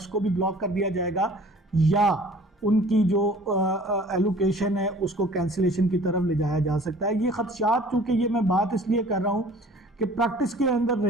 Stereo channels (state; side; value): normal; both; correlation 0.49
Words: को भी ब्लॉक कर दिया जाएगा या उनकी जो एलोकेशन है उसको कैंसिलेशन की तरफ ले जाया जा सकता है। ये खदशात, चूँकि ये मैं बात इसलिए कर रहा हूँ कि प्रैक्टिस के अंदर